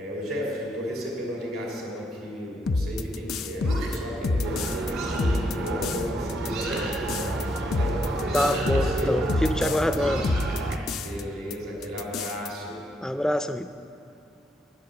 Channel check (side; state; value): both; normal; correlation 0.76